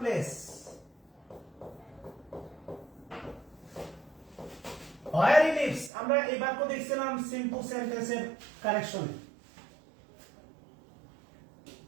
place. Where he lives, আমরা এই বাক্য দেখছিলাম সিম্পল সেন্টেন্সের কারেকশনে।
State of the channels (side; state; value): left; drops out; at 5.9 s